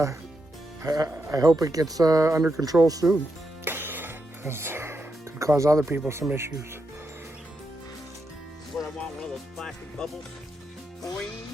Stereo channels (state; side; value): normal; both; correlation 0.84